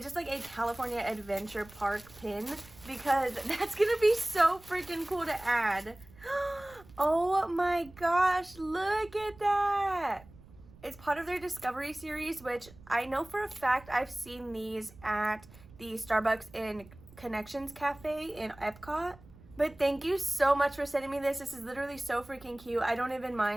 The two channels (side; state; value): right; noise; rumble, 22 dB below the sound